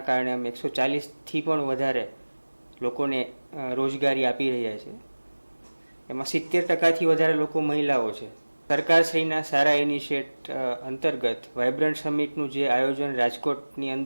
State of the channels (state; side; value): inverted; both; correlation -1.00